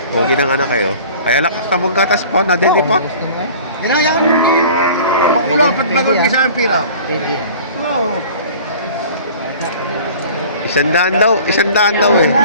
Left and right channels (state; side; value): inverted; both; correlation -0.45